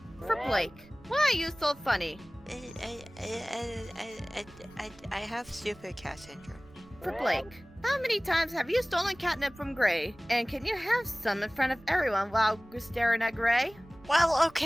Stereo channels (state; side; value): noise; right; rumble, 25 dB below the sound